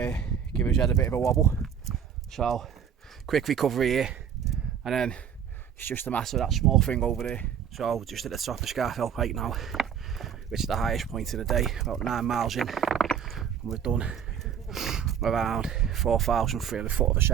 give his head a bit of a wobble. So quick recovery here, and then it's just a matter of that small thing over there. So just at the top of Scafell Pike now, which is the highest point of the day, about 9 miles in, and we've done around 4,300 foot of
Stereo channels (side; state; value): left; quieter; 8.2 dB